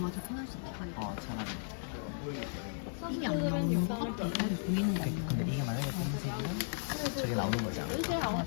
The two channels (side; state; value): right; silent; digital silence